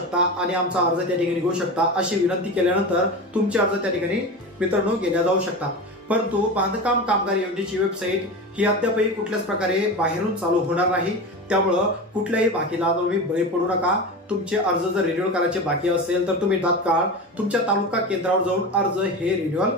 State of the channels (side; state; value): both; normal; correlation 0.27